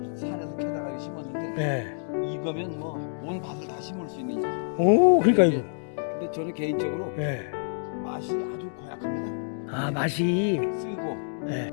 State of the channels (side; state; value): right; silent; digital silence